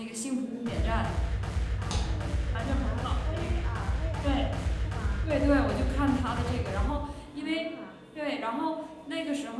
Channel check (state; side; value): identical; both; correlation 1.00